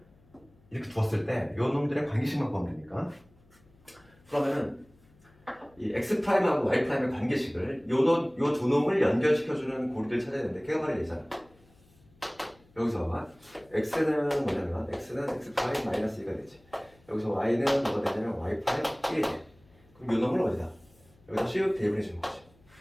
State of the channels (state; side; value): noise; left; hum, 29 dB below the sound